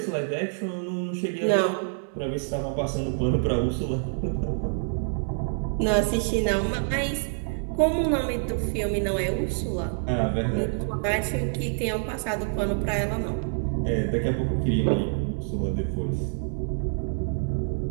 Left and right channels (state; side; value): silent; left; digital silence